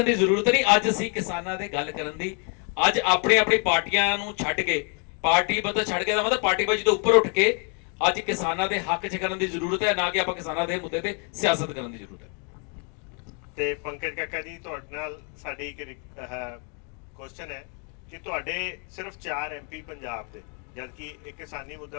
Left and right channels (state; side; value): quieter; right; 38.2 dB